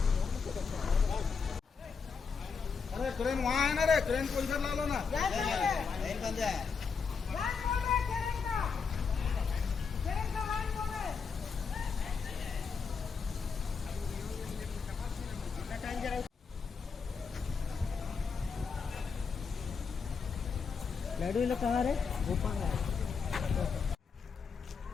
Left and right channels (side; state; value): right; quieter; 5.6 dB